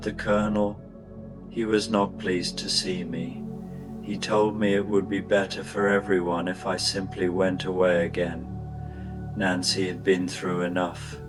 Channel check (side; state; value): both; identical; correlation 1.00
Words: the Colonel, he was not pleased to see me. He told me it would be better for everyone if I simply went away again. Nancy had been through enough,